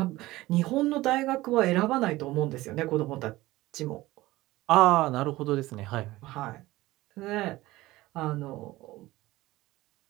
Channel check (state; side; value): quieter; left; 18.2 dB